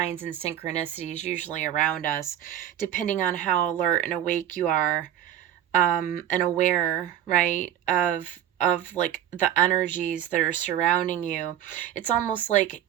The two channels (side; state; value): left; quieter; 11.2 dB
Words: and synchronicities usually around us, depending on how alert and awake you are. and aware, right, of like the energies that are surrounding you. It's almost like